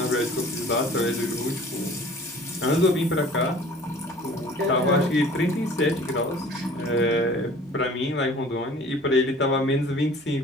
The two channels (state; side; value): normal; both; correlation 0.48